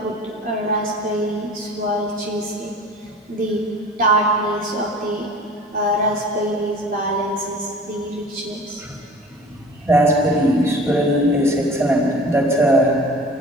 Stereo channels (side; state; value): both; normal; correlation 0.42